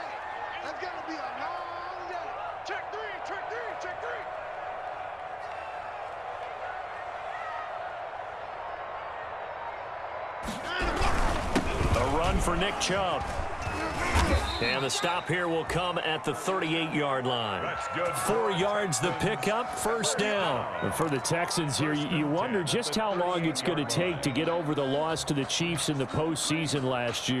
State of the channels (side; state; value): both; identical; correlation 1.00